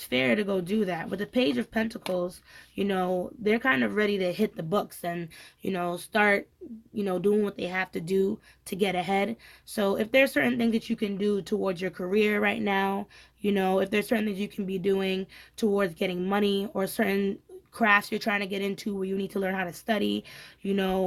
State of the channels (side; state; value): both; identical; correlation 1.00